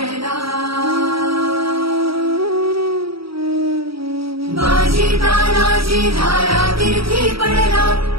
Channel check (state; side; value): late; left; 0.75 ms